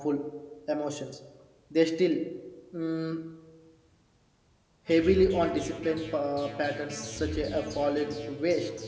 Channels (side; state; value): both; identical; correlation 1.00